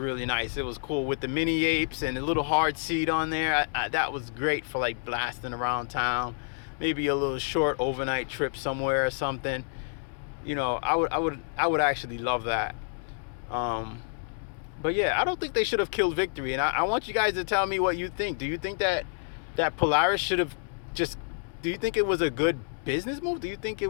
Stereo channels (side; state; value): right; silent; digital silence